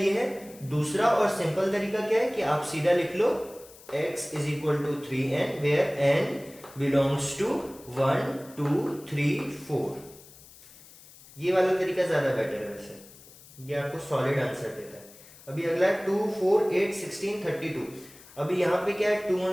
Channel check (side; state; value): left; noise; hiss, 21 dB below the sound